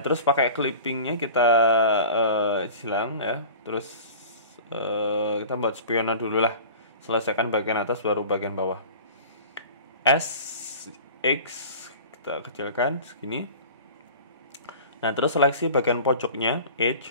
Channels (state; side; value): inverted; both; correlation -0.40